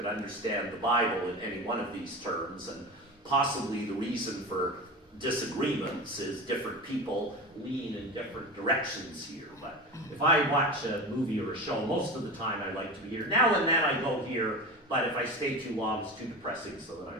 understand the Bible in any one of these terms, and possibly the reason for disagreements is different people lean in different directions here. But if I watch a movie or a show, most of the time I like to be here. Now and then I go here, but if I stay too long, it's too depressing, so then I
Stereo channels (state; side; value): normal; both; correlation 0.28